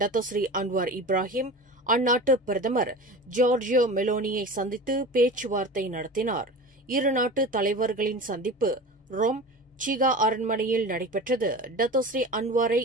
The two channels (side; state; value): both; normal; correlation 0.33